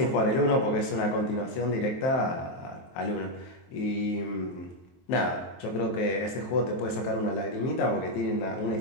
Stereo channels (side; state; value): right; late; 23 ms